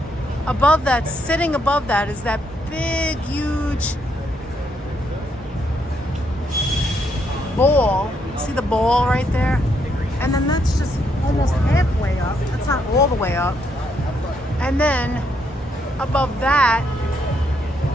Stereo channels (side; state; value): both; normal; correlation 0.75